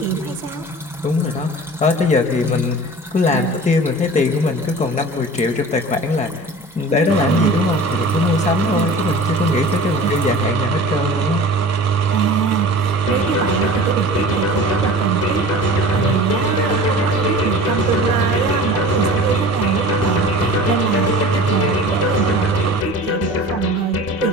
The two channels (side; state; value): both; normal; correlation 0.39